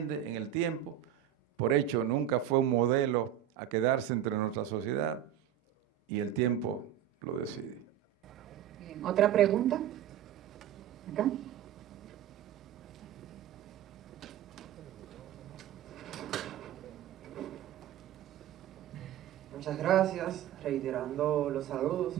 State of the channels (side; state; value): left; quieter; 11.0 dB